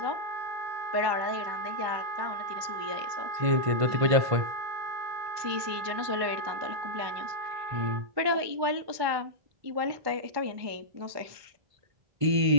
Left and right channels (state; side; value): late; left; 1.2 ms